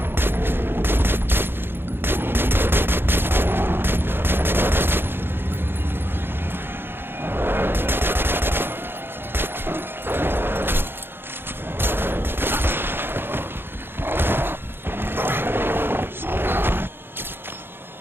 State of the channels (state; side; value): late; left; 0.10 ms